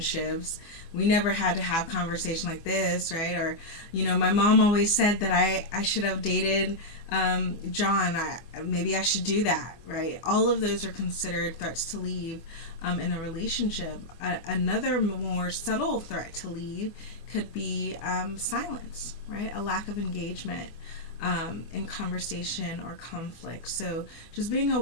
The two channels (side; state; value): right; late; 24 ms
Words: we never had to have conversation like this, right? Or, my mom always said that I should have dated John. Maybe I should do that, right? All of those are considered threats to leave in a relationship. Another more subtle threat to leave could be silence, right? A lack of engagement in conversation or conflict. So just being